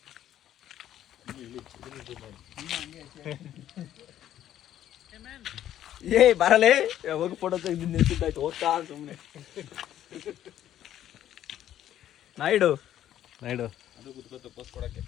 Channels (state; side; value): quieter; right; 11.6 dB